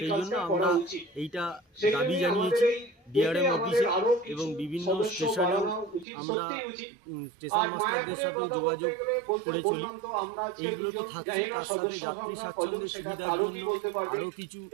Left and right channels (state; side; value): drops out; left; at 6.1 s